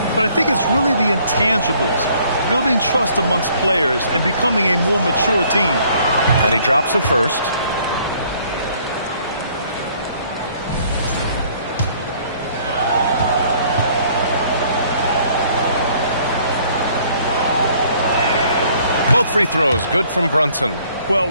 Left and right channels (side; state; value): both; inverted; correlation -0.61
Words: But I think it's really the intangibles, building trust amongst players and becoming a more mature team. And he drops the first. Both free throws, good from Brunson. Well,